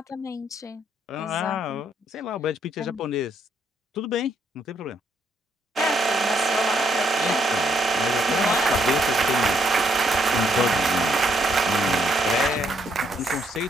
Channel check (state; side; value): normal; both; correlation 0.72